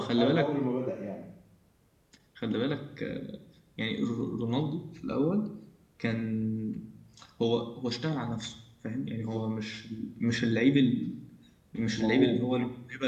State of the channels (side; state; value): both; identical; correlation 1.00